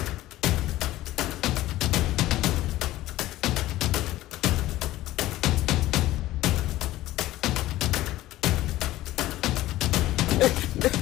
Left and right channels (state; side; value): quieter; right; 15.9 dB